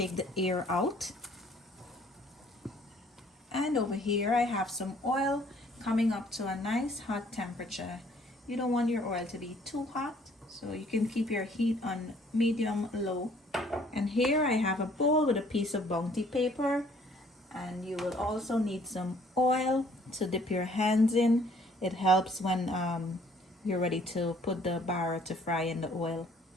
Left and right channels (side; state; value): both; normal; correlation 0.60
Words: the air out. And over here I have some oil coming up to a nice hot temperature. You don't want your oil to be too hot, so you can keep your heat on medium low. And here I have a bowl with a piece of bounty paper, and you will also need some oil to dip your hands in. It helps when you're ready to put the bara to fry in the oil.